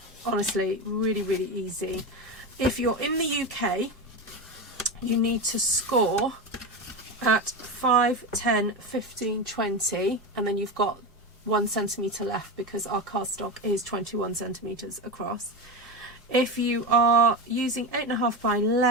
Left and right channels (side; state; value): both; normal; correlation 0.19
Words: Honestly, really, really easy. If you're in the UK, you need to score at 5, 10, 15, 20, and then you've got 1 centimetre left because our cardstock is 21 centimetres across. If you are using 8.5 by